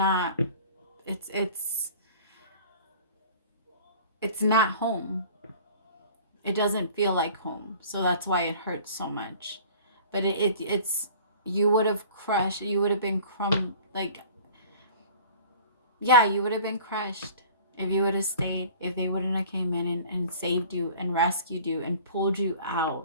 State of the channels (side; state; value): both; inverted; correlation -0.46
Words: it's not home. It doesn't feel like home. So that's why it hurts so much. But it's you would have crushed, you would have been you would have been crushed if you would have stayed, if they wouldn't have came in and saved you and rescued you and pulled you